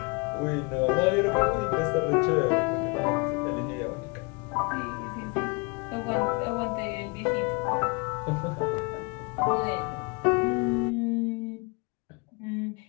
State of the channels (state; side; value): quieter; right; 30.5 dB